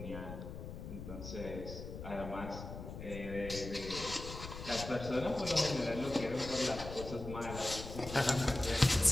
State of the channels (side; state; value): left; noise; rumble, 9 dB below the sound